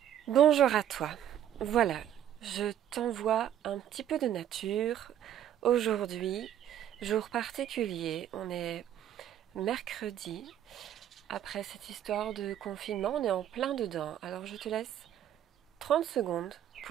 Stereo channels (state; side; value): quieter; left; 10.8 dB